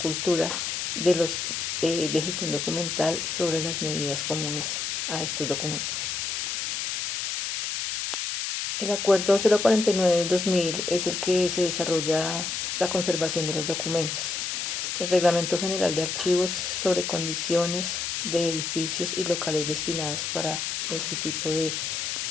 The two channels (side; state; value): left; noise; hiss, 2 dB below the sound